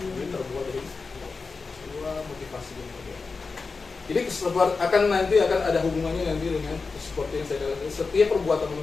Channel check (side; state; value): right; quieter; 4.4 dB